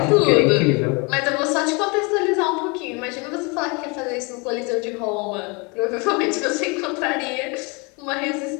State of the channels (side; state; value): right; quieter; 30.0 dB